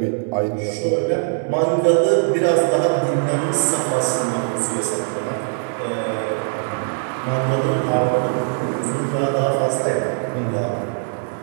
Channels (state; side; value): silent; left; 65 dB below the other